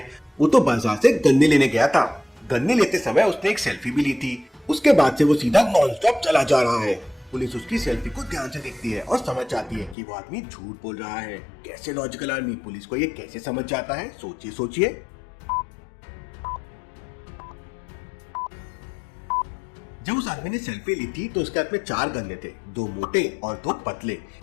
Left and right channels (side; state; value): right; drops out; at 10.0 s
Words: वो तो बाजार से गन्ने लेने गया था। गन्ने लेते समय उसने एक सेल्फी भी ली थी। उसके बाद से वो सीधा नॉन स्टॉप चला जा रहा है। पुलिस उसकी सेल्फी को ध्यान से देखती है और समझ जाती है कि वो आदमी झूठ बोल रहा है। कैसे लॉजिकल आदमी पुलिस को ये कैसे समझ जाता है, सोचिए सोचिए। जब उस आदमी ने सेल्फी ली थी तो उसके हाथ में 4 गन्ने थे, 2 मोटे और 2 पतले,